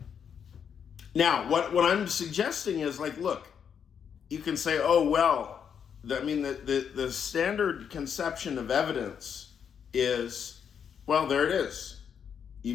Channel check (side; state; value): right; quieter; 7.6 dB